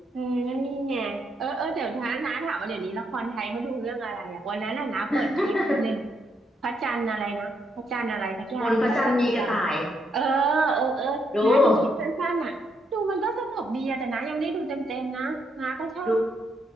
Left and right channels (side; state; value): both; normal; correlation 0.76